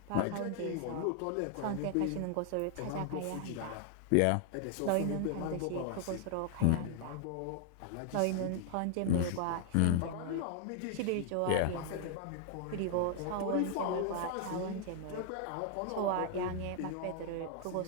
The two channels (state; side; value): different; both; correlation 0.00